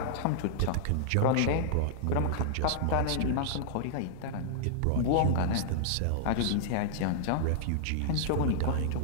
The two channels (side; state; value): both; different; correlation -0.01